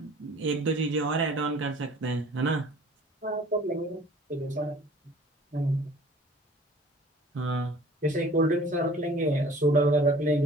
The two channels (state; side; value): normal; both; correlation 0.49